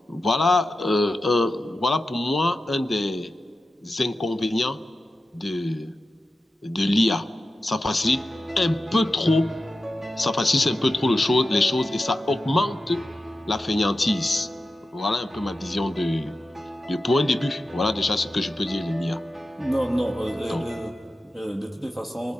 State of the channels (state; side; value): normal; both; correlation 0.92